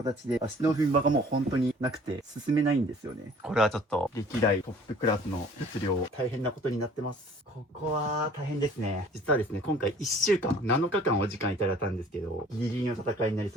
で足の踏み場がもう本当になくて進めないんですよね。これはちょっと歴代トップクラスの物量、大変なことになってます。ここは大変ですね。実はですね、今回1週間、7日間お時間いただいたんですけど、ギリギリの戦いになり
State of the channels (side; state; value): both; normal; correlation 0.52